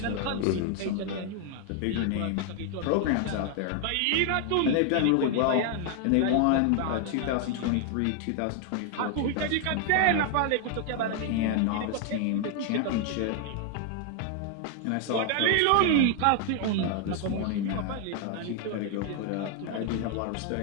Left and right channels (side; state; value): both; different; correlation 0.00